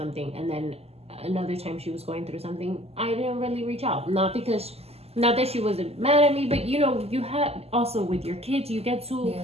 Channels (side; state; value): left; late; 0.29 ms